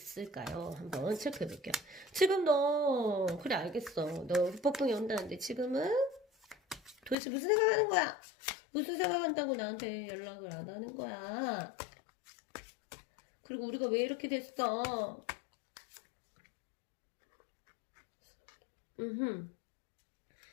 한번 체크해 볼게요. 지금 너 그래 알겠어. 너 후폭풍이 온다는데 지금은 도대체 무슨 생각하는 거야? 무슨 생각한다고 나한테 연락을 안 하는 거야? 그리고 우리가 왜 이렇게 됐어? 음.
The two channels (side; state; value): right; drops out; at 7.2 s